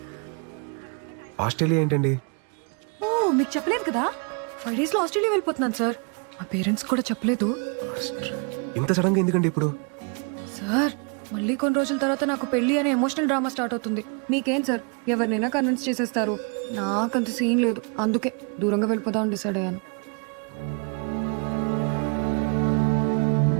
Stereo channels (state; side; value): quieter; left; 36.8 dB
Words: ఆస్ట్రేలియా ఏంటండి? ఓ, మీకు చెప్పలేదు కదా, 5 days లో ఆస్ట్రేలియా వెళ్ళిపోతున్నాను సార్. మా పేరెంట్స్ కూడా చెప్పలేదు. ఇంత సడన్ గా ఎందుకండి ఇప్పుడు? సార్, మళ్ళీ కొన్ని రోజుల తర్వాత నాకు పెళ్లి అనే ఎమోషనల్ డ్రామా స్టార్ట్ అవుతుంది. మీకేం సార్, ఎవరినైనా కన్విన్స్ చేసేస్తారు. నాకంత సీన్ లేదు, అందుకే దూరంగా వెళ్ళిపోదామని డిసైడ్ అయ్యాను.